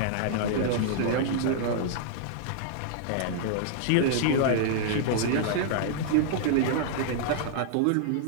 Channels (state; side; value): different; both; correlation -0.01